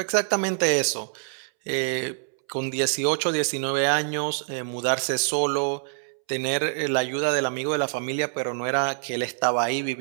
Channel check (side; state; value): left; silent; 61 dB below the other